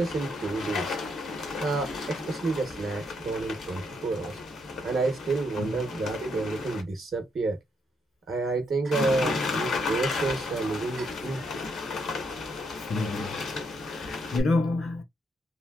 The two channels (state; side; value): normal; both; correlation 0.76